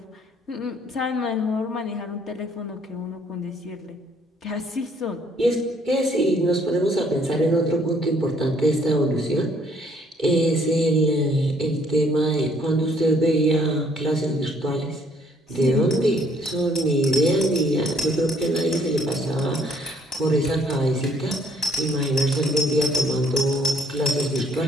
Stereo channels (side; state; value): both; normal; correlation 0.64